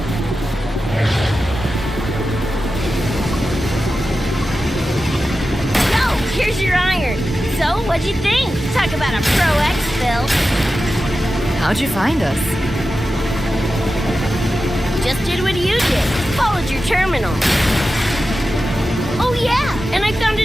What'd you think? Talk about a pro exfil. How'd you find us? Just did what you did. Followed your terminal. Oh yeah, and I found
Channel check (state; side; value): normal; both; correlation 0.93